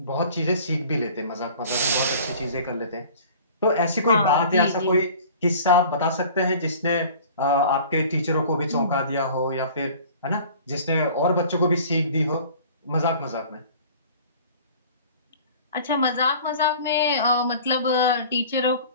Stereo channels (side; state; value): both; inverted; correlation -0.45